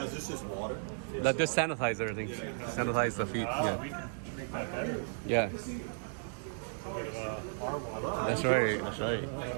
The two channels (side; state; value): left; silent; digital silence